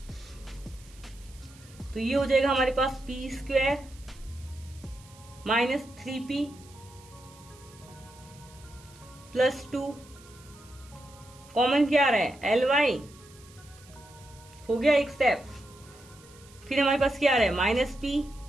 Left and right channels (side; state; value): right; noise; hiss, 24 dB below the sound